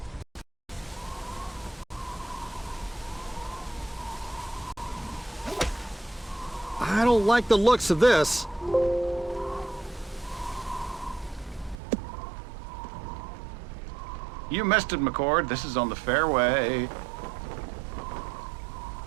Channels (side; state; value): left; drops out; at 11.8 s